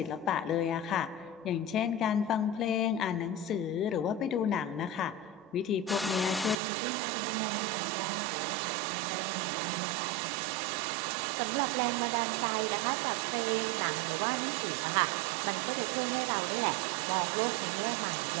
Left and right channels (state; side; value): drops out; left; at 6.6 s